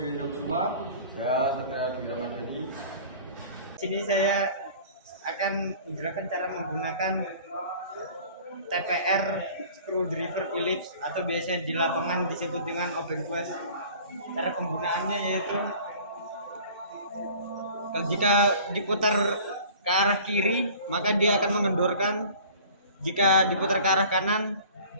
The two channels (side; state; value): both; inverted; correlation -0.46